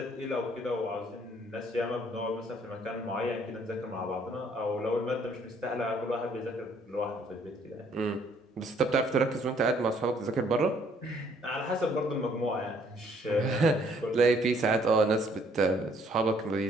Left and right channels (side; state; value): both; normal; correlation 0.64